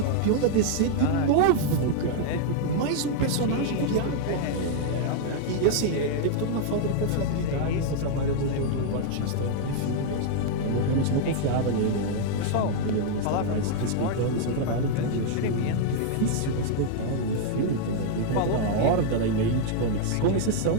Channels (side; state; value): both; different; correlation 0.00